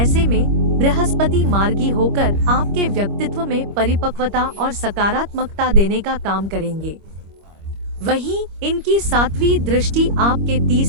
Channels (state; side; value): late; left; 25 ms